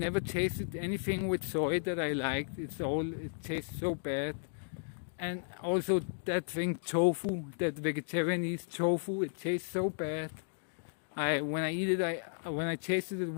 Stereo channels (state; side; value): silent; right; digital silence